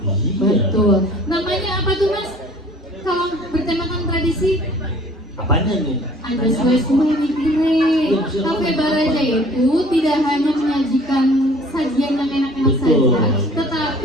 Iya. Betul. Namanya apa tuh Mas? Kalau bertemakan tradisi? Apanya nih? Ada sesuai nih kire. Cafe Baraja itu tidak hanya menyajikan sajian yang enak-enak Betul. saja,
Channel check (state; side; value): normal; both; correlation 0.51